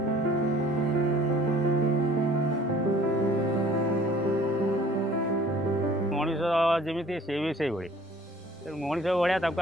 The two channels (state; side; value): normal; both; correlation 0.52